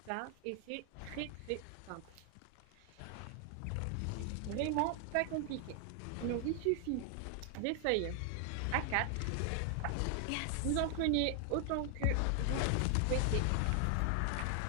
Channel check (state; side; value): different; both; correlation 0.00